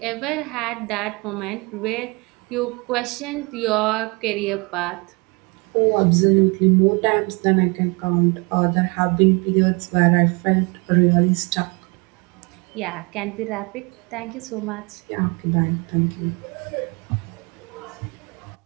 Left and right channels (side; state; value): left; quieter; 29.0 dB